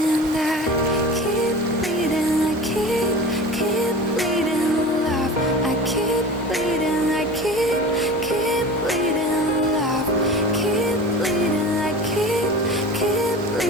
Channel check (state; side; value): normal; both; correlation 0.34